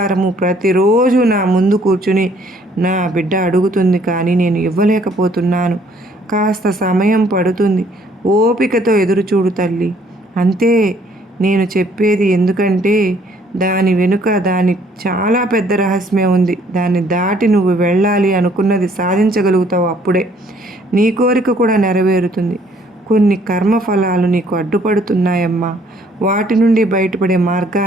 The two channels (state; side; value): normal; both; correlation 0.63